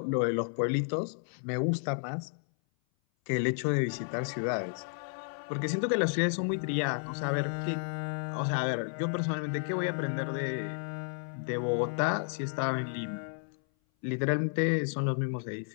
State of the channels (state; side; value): silent; right; 56 dB below the other